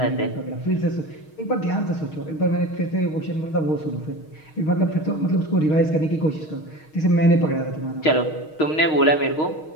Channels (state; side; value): late; right; 6.4 ms